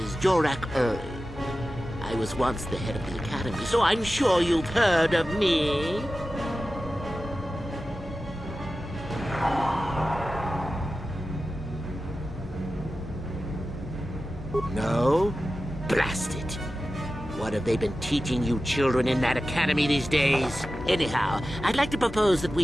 Jorak Uri. I was once the head of the academy, so I'm sure you've heard of me. No? Blast it. What have they been teaching you children in that academy these days? Anyhow, I'd like to propose that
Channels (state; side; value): normal; both; correlation 0.94